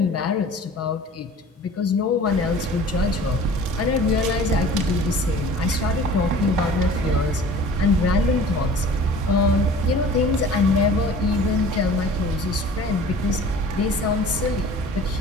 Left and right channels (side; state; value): both; normal; correlation 0.45